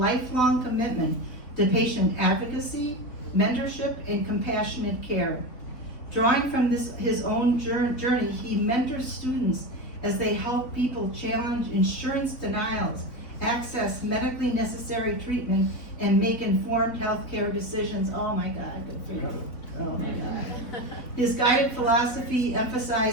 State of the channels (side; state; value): right; late; 4.1 ms